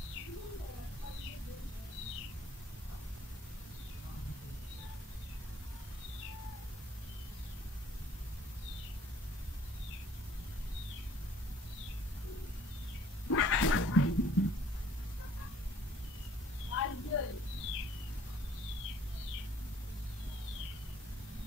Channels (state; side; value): normal; both; correlation 0.58